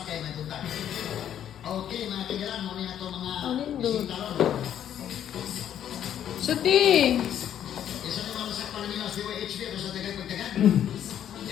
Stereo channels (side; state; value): right; quieter; 10.1 dB